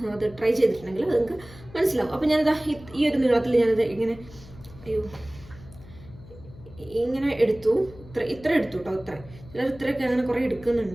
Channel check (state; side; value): noise; left; hum, 19 dB below the sound